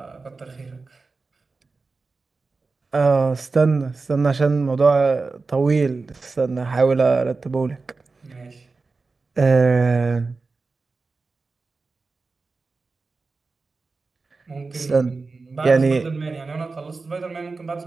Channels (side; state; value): left; quieter; 4.0 dB